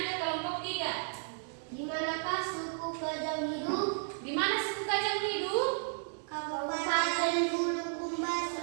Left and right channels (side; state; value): left; silent; 55 dB below the other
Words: ke kelompok 3. Di manakah suku kajang hidup? Di mana suku kajang hidup? Kabupaten Bulukumba,